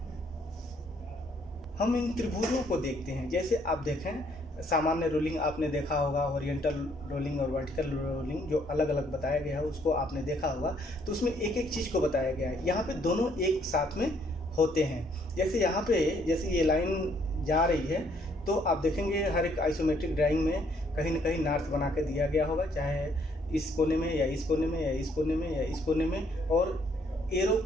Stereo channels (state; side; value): normal; both; correlation 0.67